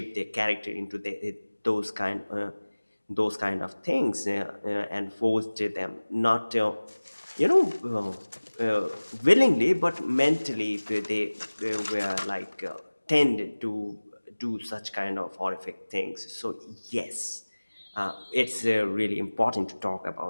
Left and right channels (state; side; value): inverted; both; correlation -1.00